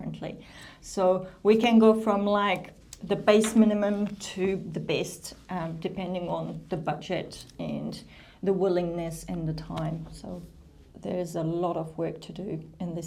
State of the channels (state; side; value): identical; both; correlation 1.00